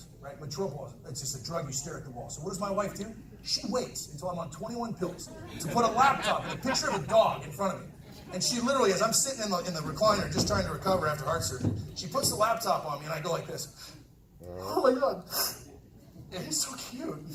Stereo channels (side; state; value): both; identical; correlation 1.00